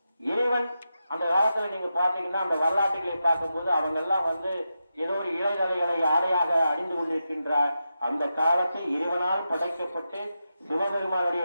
இறைவன் அந்த காலத்துல நீங்க பாத்தீங்கன்னா அந்த வரலாற்றுகளை பார்க்கும்போது அவங்க எல்லாம் ஏதோ ஒரு இளைதலைகளை ஆடையாக அணிந்து கொண்டிருக்கின்ற அந்த காலத்தில் இறைவனால் படைக்கப்பட்டு சிவபெருமானுடைய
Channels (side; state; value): both; inverted; correlation -0.89